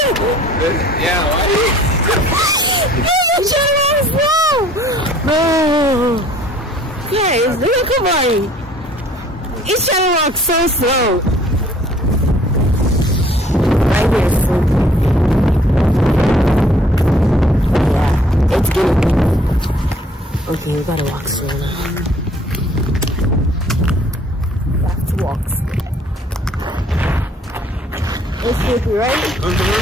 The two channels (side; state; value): both; normal; correlation 0.57